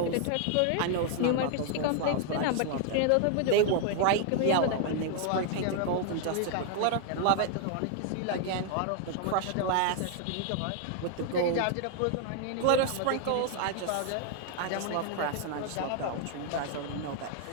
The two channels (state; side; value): different; both; correlation 0.00